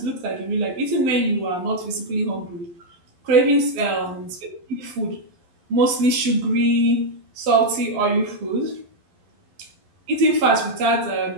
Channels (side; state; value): left; late; 11 ms